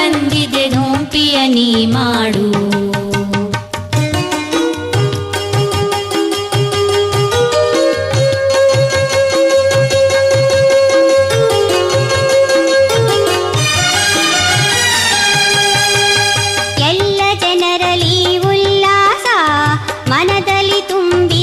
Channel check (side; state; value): both; identical; correlation 1.00